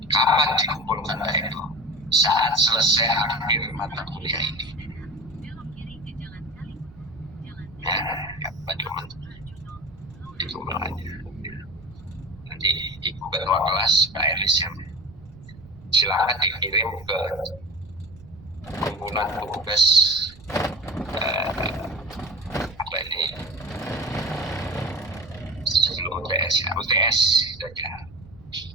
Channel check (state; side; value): noise; right; rumble, 21 dB below the sound